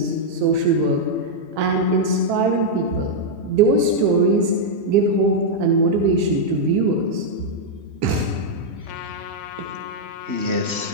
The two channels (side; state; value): left; late; 3.2 ms